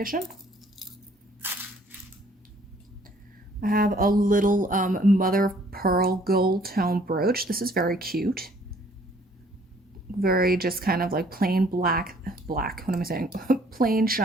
I have a little mother of pearl gold tone brooch. This is very cute. Very just kind of like plain black, what am I saying? Plain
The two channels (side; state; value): both; normal; correlation 0.60